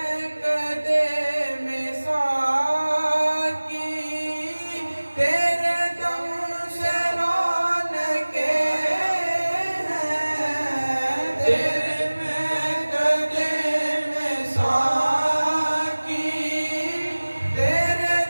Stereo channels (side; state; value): both; inverted; correlation -1.00